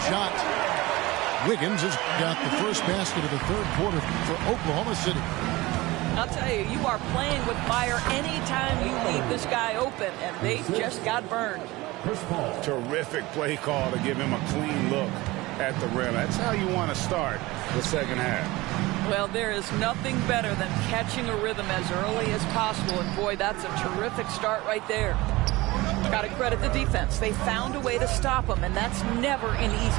shot. Wiggins has got the first basket of the third quarter for Oklahoma City. I'll tell you, you are playing with fire anytime you leave this guy open, and they just got burned. Terrific play call to give him a clean look at the rim. That's how you want to start the second half. Well, there is nothing better than catching a rhythm as early as possible, and boy, that's a terrific start right there. Got to credit the defense. They found a way to stop him, and that's never an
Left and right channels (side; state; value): left; quieter; 20.5 dB